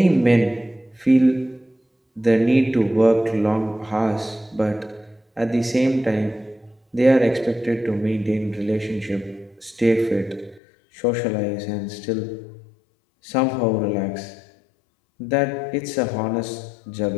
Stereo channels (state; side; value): drops out; right; at 10.6 s